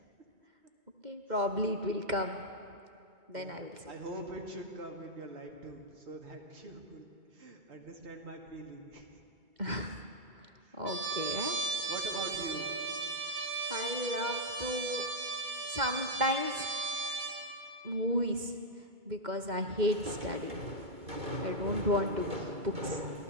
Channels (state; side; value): late; left; 2.1 ms